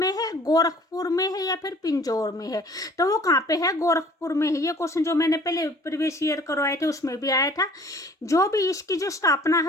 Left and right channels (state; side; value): normal; both; correlation 0.52